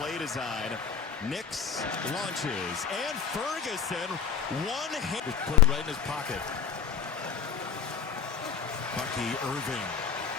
design. Nix launches, and Ferguson, one hit. Just put it right in his pocket. Bucky Irving.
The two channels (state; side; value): quieter; right; 7.2 dB